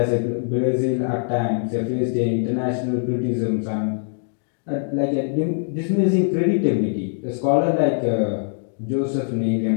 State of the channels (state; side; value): silent; right; digital silence